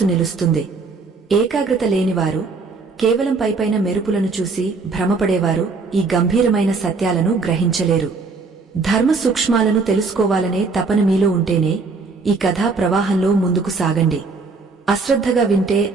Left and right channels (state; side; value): quieter; left; 4.2 dB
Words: నిలుస్తుంది. ఏకాగ్రత లేనివారు, కేవలం పైపైన మెరుపులను చూసి భ్రమపడేవారు ఈ గంభీరమైన సత్యాలను గ్రహించలేరు. ధర్మ సూక్ష్మాలను తెలుసుకోవాలనే తపన మీలో ఉంటేనే ఈ కథా ప్రవాహంలో ముందుకు సాగండి. అశ్రద్ధగా వింటే